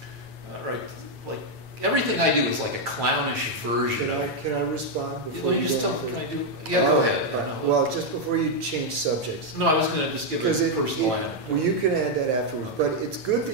everything I do is like a clownish version Can I respond before Let me you just go tell. on Can I further? do? Yeah, go ahead. All right. Well, just before you change subjects. No, I was going to just give a personal anecdote. Well, you can add that afterwards. Okay. But it's good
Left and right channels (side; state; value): left; late; 8.9 ms